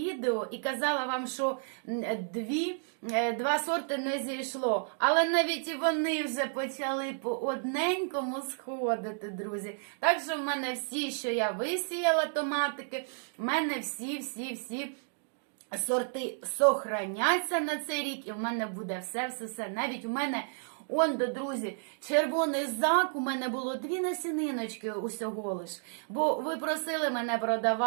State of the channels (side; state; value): left; silent; digital silence